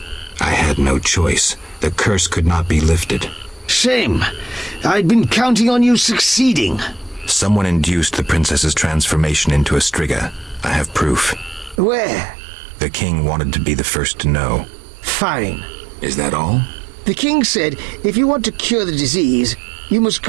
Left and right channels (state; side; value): drops out; left; at 11.8 s